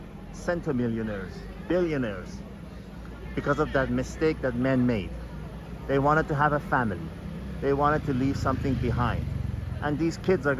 centimillionaires, billionaires, because of that mistake that men made. They wanted to have a family. They wanted to leave something behind. And these kids are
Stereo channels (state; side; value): identical; both; correlation 1.00